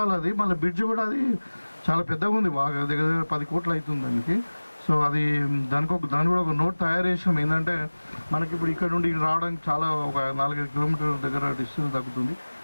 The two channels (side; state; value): both; inverted; correlation -1.00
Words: అది మళ్ళీ బ్రిడ్జ్ కూడా అది చాలా పెద్దగా ఉంది, బాగా దగ్గర 10 కోట్లు అవుతుంది దానికి. సో అది దాని కూడా ఒక నోట్ తయారు చేసాం. ఏంటంటే మనకి ఇప్పుడు ఇక్కడ నుండి రావడానికి చాలా ఒక 4-5 కిలోమీటర్ల దగ్గర డిస్టెన్స్ తగ్గుతుంది.